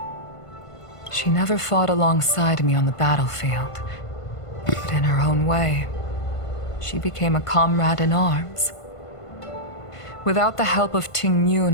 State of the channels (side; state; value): right; late; 1.5 ms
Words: She never fought alongside me on the battlefield, but in her own way, she became a comrade in arms. Without the help of Ting